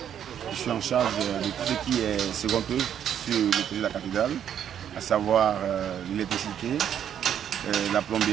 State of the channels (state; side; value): quieter; left; 9.4 dB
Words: Je suis en charge de tout ce qui est second œuvre sur le projet de la cathédrale, à savoir l'électricité, la